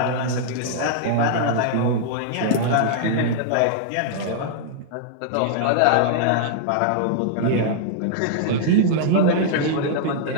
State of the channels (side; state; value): both; different; correlation -0.01